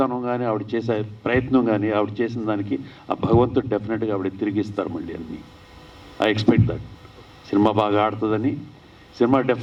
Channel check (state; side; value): identical; both; correlation 1.00